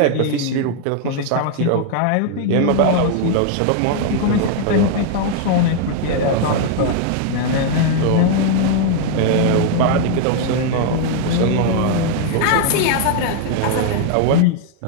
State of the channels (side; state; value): both; different; correlation 0.00